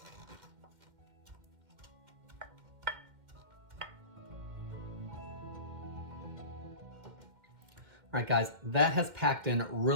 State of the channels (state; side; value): late; left; 2.1 ms